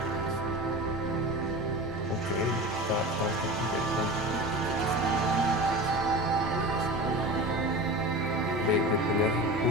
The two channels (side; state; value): both; normal; correlation 0.32